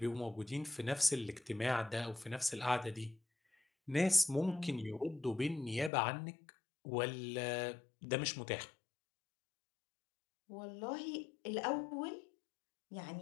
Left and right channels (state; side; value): drops out; right; at 5.9 s